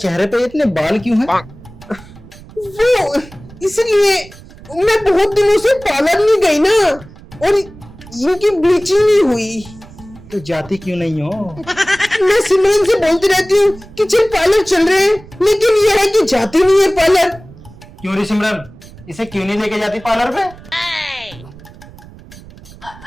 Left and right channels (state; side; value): noise; right; rumble, 20 dB below the sound